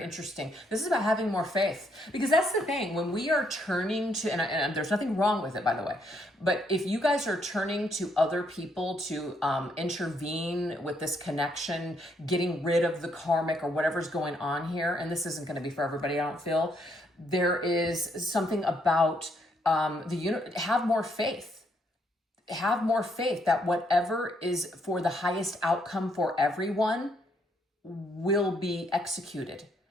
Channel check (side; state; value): both; normal; correlation 0.72